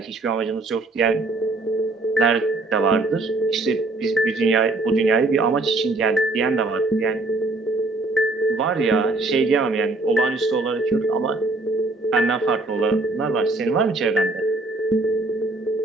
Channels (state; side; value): quieter; left; 3.1 dB